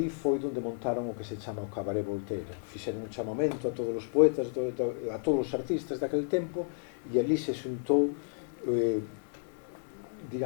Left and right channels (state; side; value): silent; right; 56 dB below the other